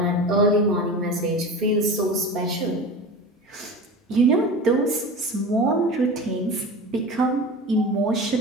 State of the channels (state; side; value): normal; both; correlation 0.32